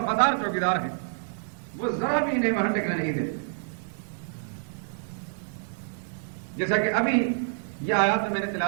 چوکیدار ہیں، وہ ذرا بھی انہیں وہاں ٹکنے نہیں دیتے۔ جیسا کہ ابھی یہ آیات جو میں نے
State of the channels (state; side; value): silent; left; digital silence